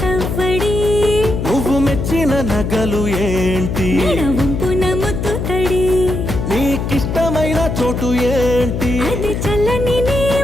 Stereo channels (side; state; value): left; noise; hum, 3 dB below the sound